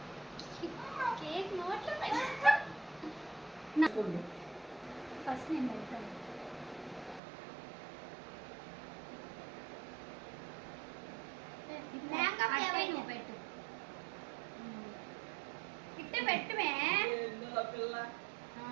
కేక్ నోట్లో ఫస్ట్ నేను పెడతాను. నువ్వు పెట్టు ఇట్టే పెట్టుమే.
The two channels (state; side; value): drops out; left; at 7.2 s